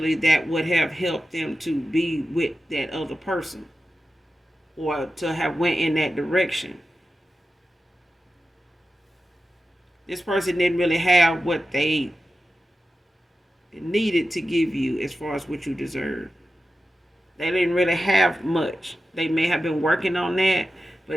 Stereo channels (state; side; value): normal; both; correlation 0.92